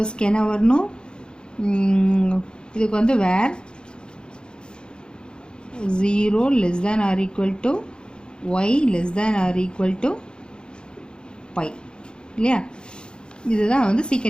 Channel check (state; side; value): late; right; 0.050 ms